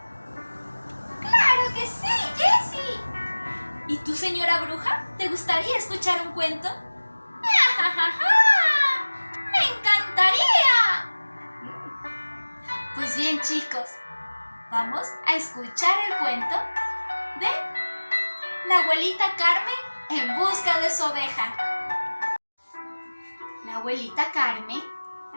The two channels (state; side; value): inverted; both; correlation -1.00